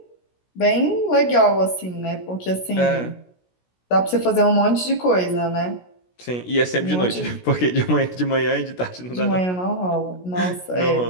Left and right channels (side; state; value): right; late; 16 ms